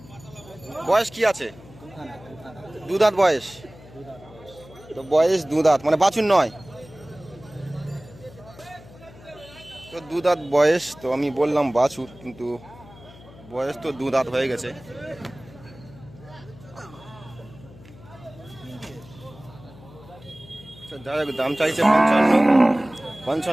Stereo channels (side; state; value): left; noise; hum, 21 dB below the sound